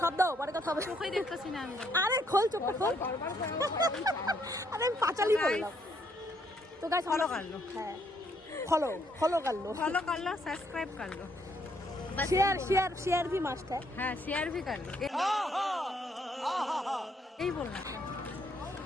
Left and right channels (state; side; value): normal; both; correlation 0.71